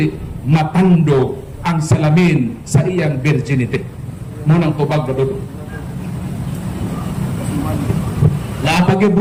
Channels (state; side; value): identical; both; correlation 1.00